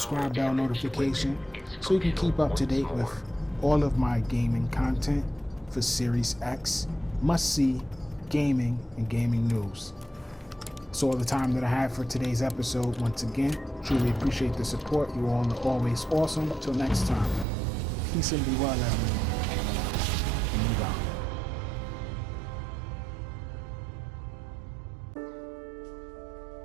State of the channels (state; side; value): drops out; left; at 17.4 s